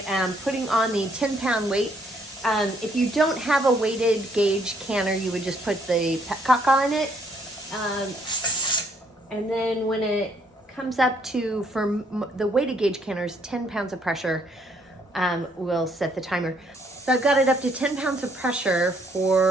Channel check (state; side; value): normal; both; correlation 0.68